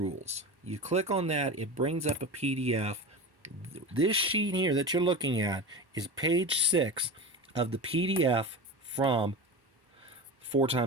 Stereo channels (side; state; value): left; late; 1.1 ms